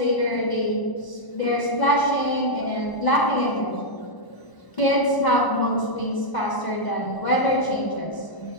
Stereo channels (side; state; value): right; late; 1.0 ms